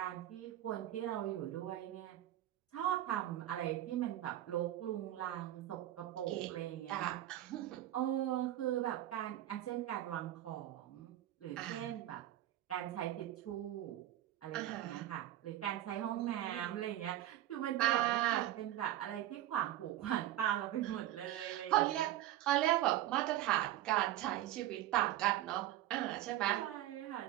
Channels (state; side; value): quieter; left; 13.6 dB